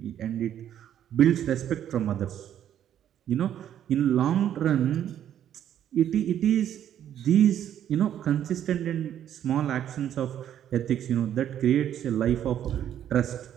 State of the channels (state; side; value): quieter; left; 10.4 dB